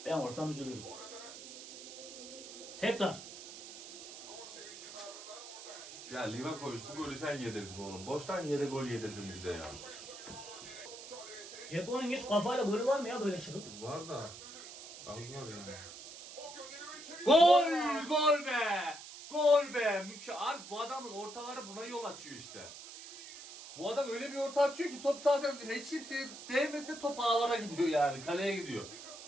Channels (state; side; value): noise; right; hiss, 13 dB below the sound